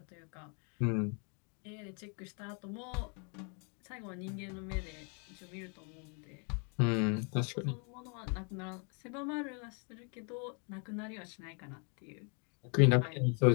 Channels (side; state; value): right; quieter; 38.0 dB